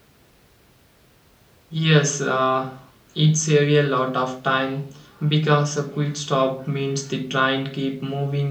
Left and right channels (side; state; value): both; identical; correlation 1.00